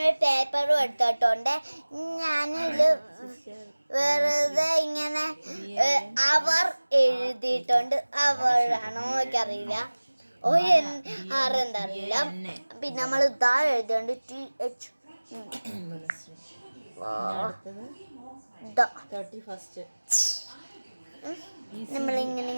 ഒരു പേപ്പറും എടുത്തിട്ടുണ്ട്. ഞാനിത് വെറുതെ ഇങ്ങനെ അവർ എഴുതിയിട്ടുണ്ട്. അവരാണോ എനിക്കറിയില്ല, ആരെന്താ അറിയില്ല. പിന്നെ നമ്മൾ ഇതാ എഴുതിയുണ്ട് TH.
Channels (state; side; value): inverted; both; correlation -1.00